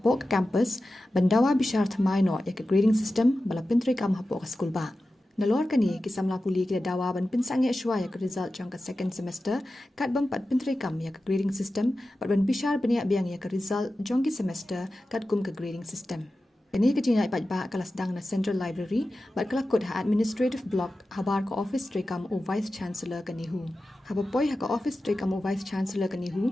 ka campus bandawa bishar thymmai no ya ka grading system bala pintri kam hapo ka school ba. Nalor kani ki samla puli ki dawa ban pinsang ya shwa ya ka result jang ka second semester kat bam pat pintri kam ya ka grading system pat ban bishar bania biang ya ka result jang ki semester kat kum ka grading system. Kini kejinai paidbah kelas dang na Central Library, bat kelakut ha administrative block habar ka office trekam o vice chancellor ka NEHU. Habapoi ha ka office trekam o vice chancellor ka NEHU,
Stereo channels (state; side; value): normal; both; correlation 0.94